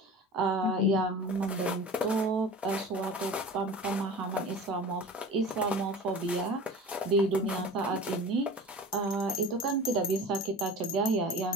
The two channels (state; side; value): normal; both; correlation 0.37